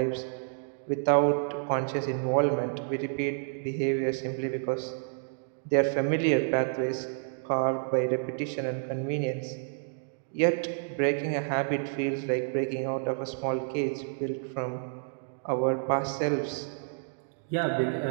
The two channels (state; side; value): silent; left; digital silence